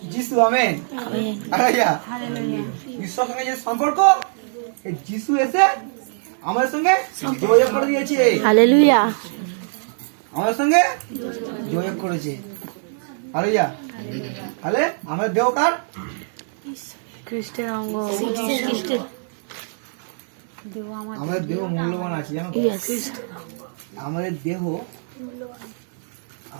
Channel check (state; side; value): silent; left; digital silence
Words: যিশু। Amen amen hallelujah. ঈশ্বরের সঙ্গে যে সম্পর্ক, এই যিশু এসে আমাদের সঙ্গে যোগাযোগ করে দিয়েছে, হালেলুয়া। আমাদের সঙ্গে যোগাযোগ করেছে। হালেলুয়া। তাহলে আমাদের দেহ কার? খ্রিস্টের অঙ্গ। আমাদের দেহ মূল্যবান আছে, জানো তো? ইয়েস আমাদের